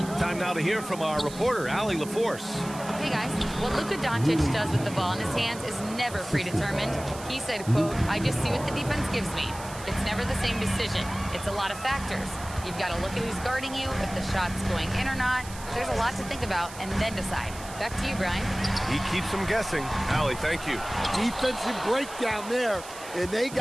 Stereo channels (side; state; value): right; noise; hiss, 15 dB below the sound